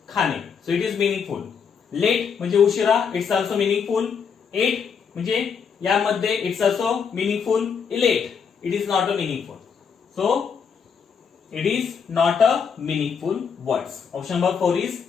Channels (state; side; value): quieter; right; 6.5 dB